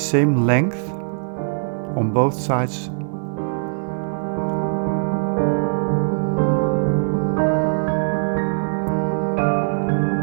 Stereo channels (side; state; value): left; silent; digital silence